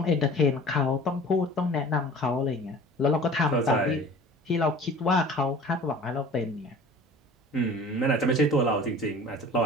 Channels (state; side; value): normal; both; correlation 0.44